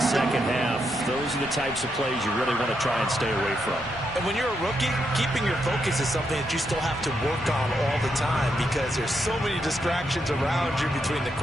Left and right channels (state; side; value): normal; both; correlation 0.81